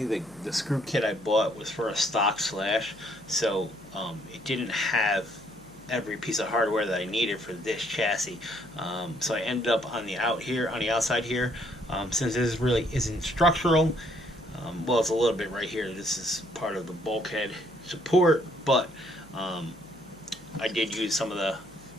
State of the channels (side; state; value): left; noise; hum, 24 dB below the sound